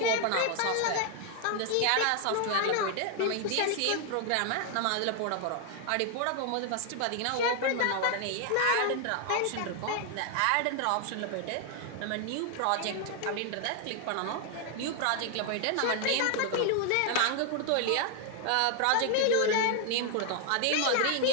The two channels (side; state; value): both; different; correlation 0.00